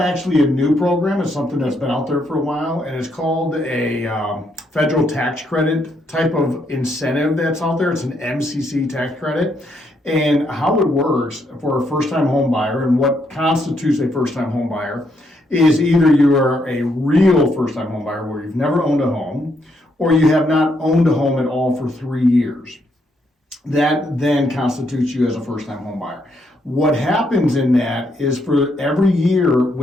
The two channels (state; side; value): normal; both; correlation 0.76